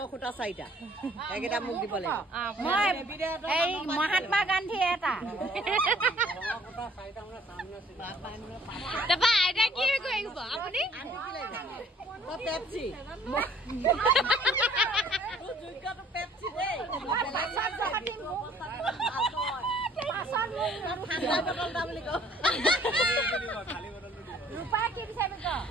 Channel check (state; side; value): normal; both; correlation 0.58